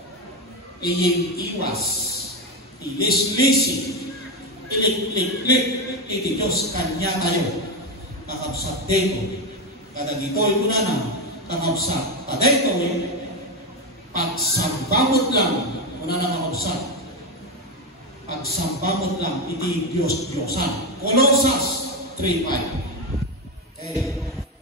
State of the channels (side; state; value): both; normal; correlation 0.12